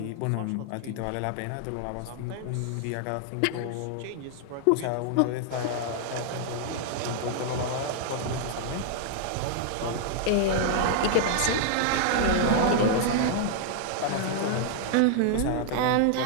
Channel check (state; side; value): different; both; correlation -0.01